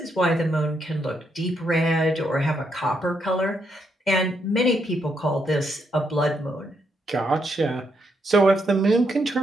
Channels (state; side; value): normal; both; correlation 0.78